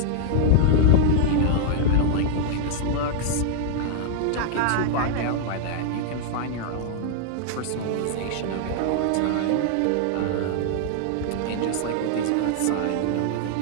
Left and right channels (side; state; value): both; different; correlation -0.01